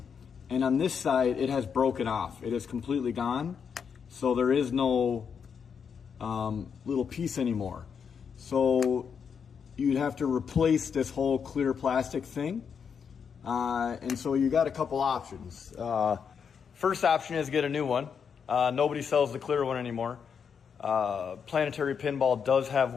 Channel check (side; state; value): right; quieter; 6.8 dB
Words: And on this side, it has broken off. It is completely gone. So there is no little piece anymore. So you'd have to replace this whole clear plastic thing. And so you got a couple options. First option is get a new one. Nobody sells the clear one anymore. Planetary Pinball does have